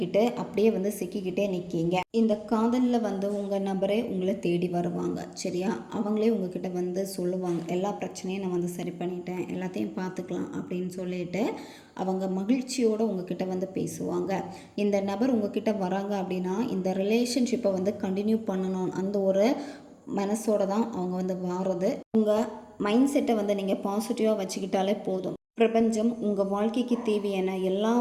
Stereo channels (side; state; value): both; identical; correlation 1.00